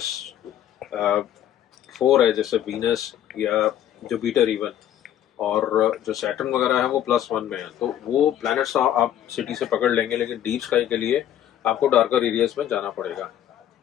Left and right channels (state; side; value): quieter; right; 11.0 dB